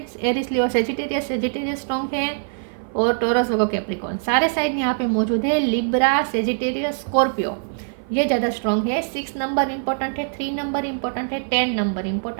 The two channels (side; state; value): left; silent; 55 dB below the other